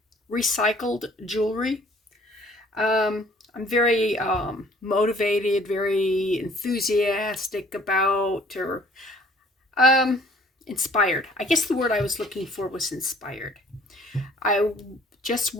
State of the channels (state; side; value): normal; both; correlation 0.55